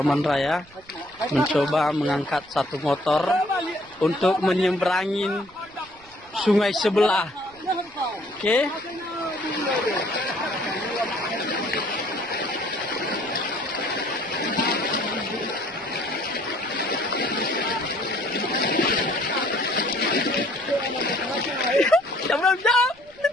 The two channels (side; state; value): right; noise; rumble, 27 dB below the sound